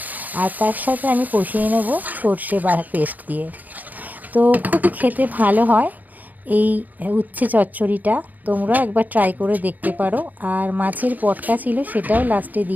আর তার সাথে আমি কষিয়ে নেব সর্ষে পেস্ট দিয়ে। তো খুবই খেতে ভালো হয় এই উচ্ছে চচ্চড়িটা, তোমরা একবার ট্রাই করে দেখতে পারো। আর মাছের পটকা ছিল, সেটাও লাস্টে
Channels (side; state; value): left; late; 0.082 ms